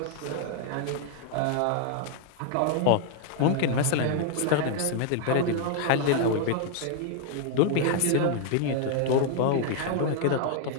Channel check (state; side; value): different; both; correlation 0.00